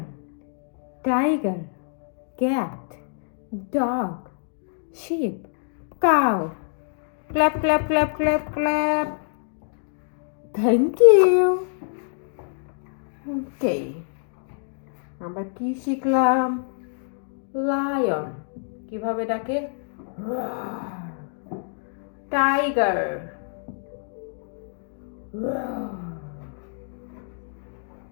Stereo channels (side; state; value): right; silent; digital silence